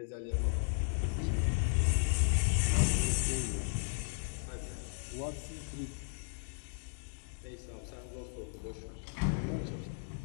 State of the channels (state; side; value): silent; right; digital silence